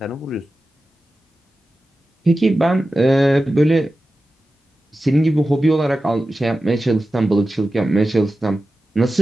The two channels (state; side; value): normal; both; correlation 0.94